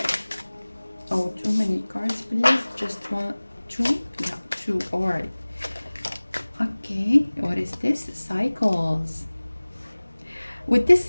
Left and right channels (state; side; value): inverted; both; correlation -1.00